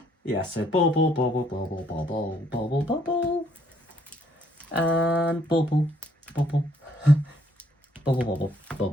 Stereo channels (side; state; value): both; normal; correlation 0.67